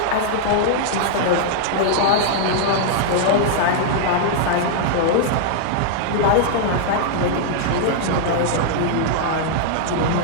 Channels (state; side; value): different; both; correlation -0.01